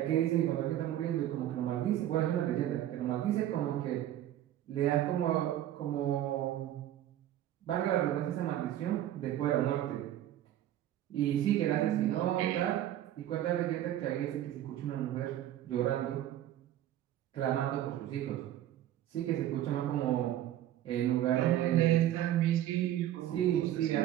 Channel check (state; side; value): quieter; left; 12.5 dB